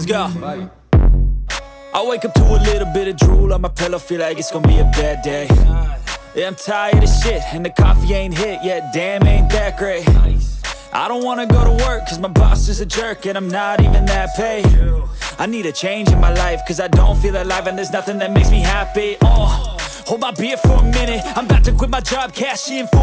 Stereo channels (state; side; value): identical; both; correlation 1.00